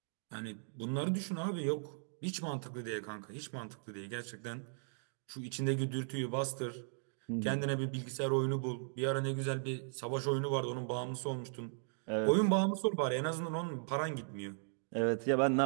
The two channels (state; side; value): silent; left; digital silence